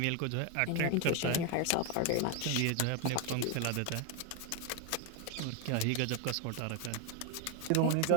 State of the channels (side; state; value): both; different; correlation 0.01